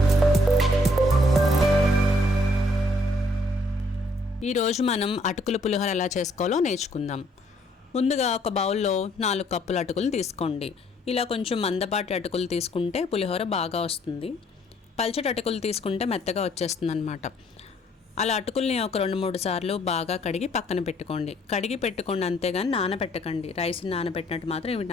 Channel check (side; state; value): both; normal; correlation 0.65